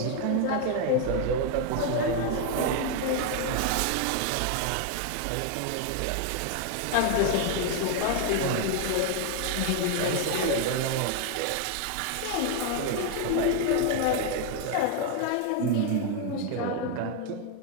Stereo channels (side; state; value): both; different; correlation 0.00